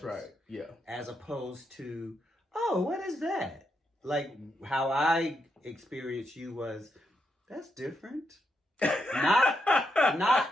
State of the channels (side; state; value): both; normal; correlation 0.81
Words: right. Yeah. As opposed to, oh, what is that? Like how I experienced you was, that's different.